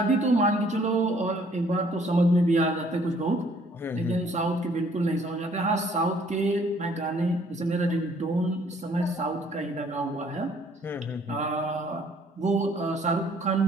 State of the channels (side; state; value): both; normal; correlation 0.61